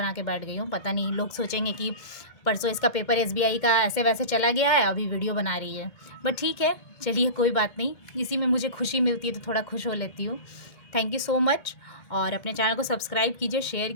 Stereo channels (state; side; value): late; right; 1.8 ms